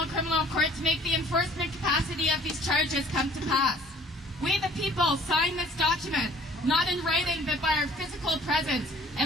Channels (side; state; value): both; normal; correlation 0.55